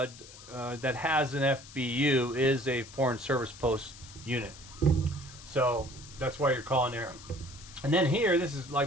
that has an FBU is a foreign service post unit. So that's why you're calling there. And then here, this is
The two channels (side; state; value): left; noise; hiss, 18 dB below the sound